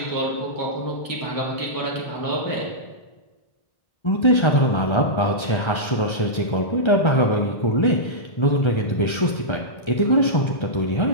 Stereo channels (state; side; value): late; right; 1.3 ms